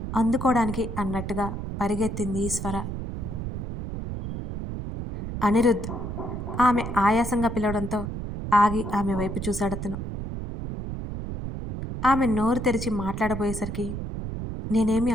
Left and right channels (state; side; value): noise; right; rumble, 6 dB below the sound